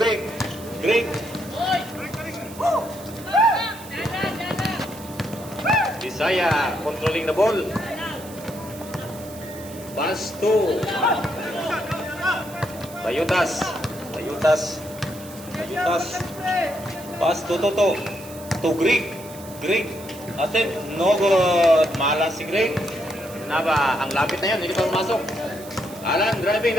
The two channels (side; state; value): right; noise; hiss, 17 dB below the sound